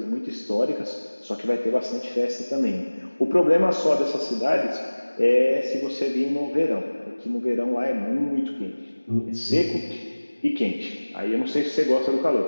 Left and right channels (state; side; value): inverted; both; correlation -1.00